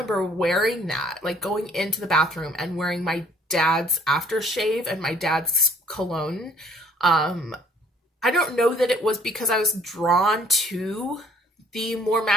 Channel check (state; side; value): normal; both; correlation 0.57